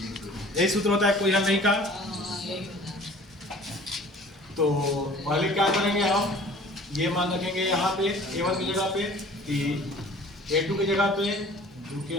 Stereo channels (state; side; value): normal; both; correlation 0.48